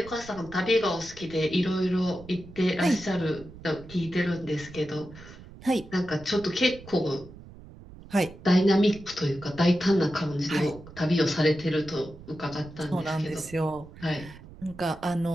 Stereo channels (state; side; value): noise; right; rumble, 18 dB below the sound